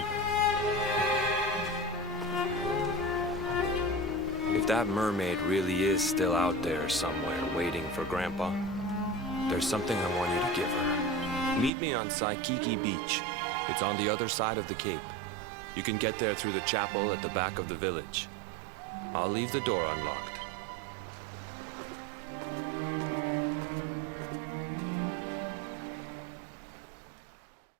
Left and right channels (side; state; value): left; drops out; at 11.7 s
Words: If that mermaid really is still out there somewhere waiting for Grandpa, there's something I want you to give her. Meet me on Saikiki Beach. It's on the other side of the cape. You can get there through the chapel at the back of the village. I'll leave the door unlocked.